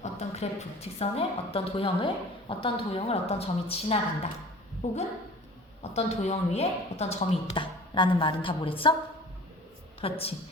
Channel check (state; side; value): normal; both; correlation 0.43